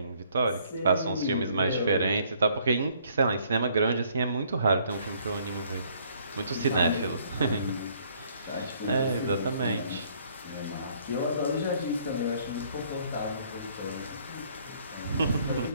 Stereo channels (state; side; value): inverted; both; correlation -0.63